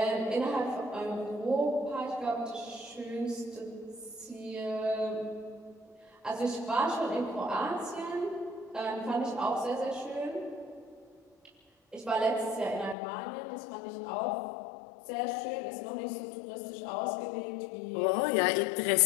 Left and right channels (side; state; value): right; drops out; at 13.0 s